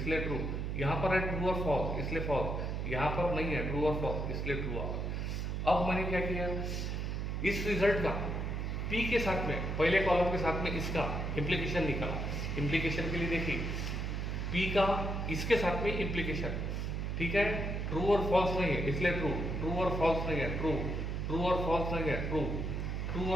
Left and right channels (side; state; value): right; noise; hum, 2 dB below the sound